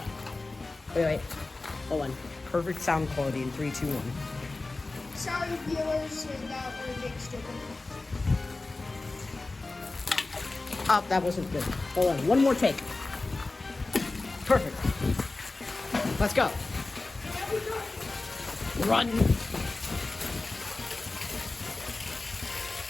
Yeah. Wait. Hold on. Perfect sound quality in 3, 2, 1. Sorry, viewers, that we're being stupid. Oh, that wasn't good. Hold on. One more take. Perfect. Let's go. Run. And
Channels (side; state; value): right; quieter; 3.3 dB